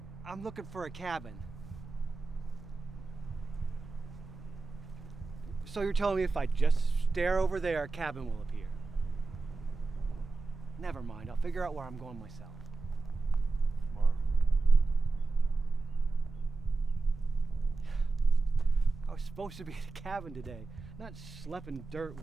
I'm looking for a cabin. So you're telling me if I just stare over there, a cabin will appear? Never mind, I'll figure out where I'm going myself. Tomorrow. I was supposed to be at a cabin today, not schlepping dirt,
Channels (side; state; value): left; quieter; 3.8 dB